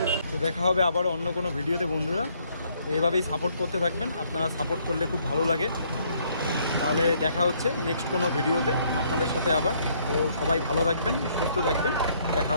তো দেখা হবে আবার অন্য কোনো ভিডিওতে বন্ধুরা। তো এইভাবেই সাপোর্ট করতে থাকবেন, আপনারা সাপোর্ট করলে খুব ভালো লাগে। তাহলে দেখা হচ্ছে নেক্সট কোনো ভিডিওতে আপনাদের সাথে আবার। তো সবাই ভালো থাকবেন, সুস্থ থাকবেন, দেখা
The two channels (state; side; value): inverted; both; correlation -0.67